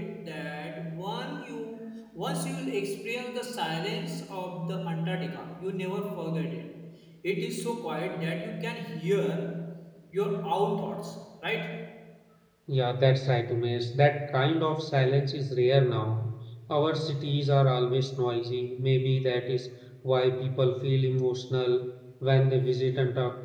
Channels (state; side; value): identical; both; correlation 1.00